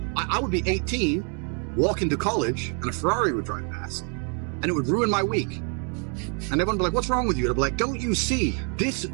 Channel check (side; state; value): left; quieter; 39.5 dB